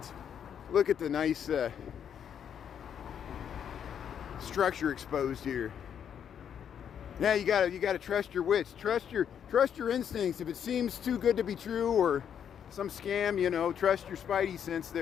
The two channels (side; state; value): right; quieter; 8.5 dB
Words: Look at the nice structure exposed here. Yeah, you gotta trust your wits. Trust your instincts. If it seems too good to be true or some scam, you know, trust your spidey sense